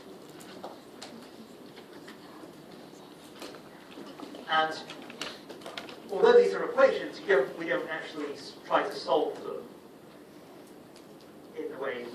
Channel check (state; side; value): identical; both; correlation 1.00